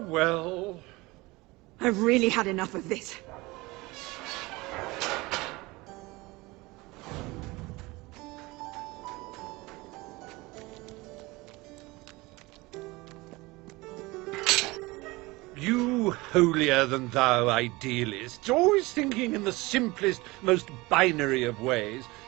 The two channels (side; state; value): left; quieter; 22.4 dB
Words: well. I've really had enough of this. You holier-than-thou idealists, always thinking in the simplest, most binary of ways.